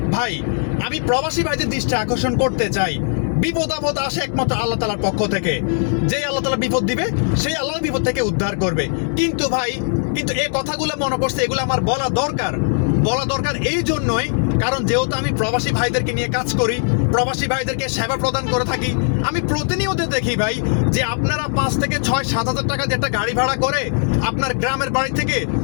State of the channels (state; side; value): silent; right; 66 dB below the other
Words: ভাই, আমি প্রবাসী ভাইদের দৃষ্টি আকর্ষণ করতে চাই, বিপদ আপদ আসে একমাত্র আল্লাহ তাআলার পক্ষ থেকে। যেই আল্লাহ তাআলা বিপদ দিবে, সেই আল্লাহ বিপদ থেকে উদ্ধার করবে। কিন্তু ভাই, এই কথাগুলো মনে করছে, এগুলো আমার বলা দরকার এই জন্যই, কারণ যেহেতু আমি প্রবাসী ভাইদেরকে নিয়ে কাজ করি, প্রবাসী ভাইদেরকে সেবা প্রদান করে থাকি। আমি প্রতিনিয়ত দেখি ভাই যে আপনারা 5 থেকে 6-7 হাজার টাকা দিয়ে একটা গাড়ি ভাড়া করে আপনার গ্রামের বাড়ি থেকে